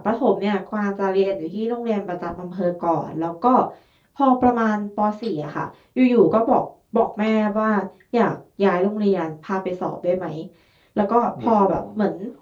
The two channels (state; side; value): identical; both; correlation 1.00